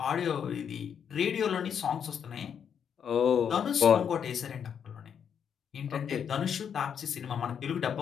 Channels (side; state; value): right; quieter; 7.8 dB